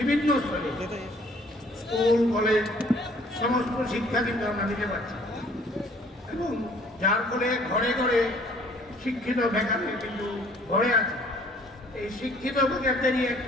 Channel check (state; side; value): normal; both; correlation 0.57